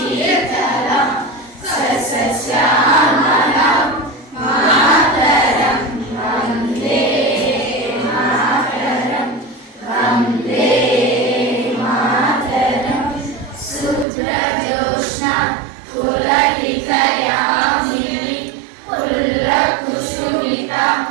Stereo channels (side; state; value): left; drops out; at 14.1 s